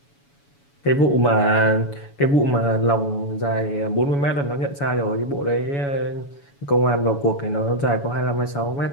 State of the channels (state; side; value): late; right; 7.1 ms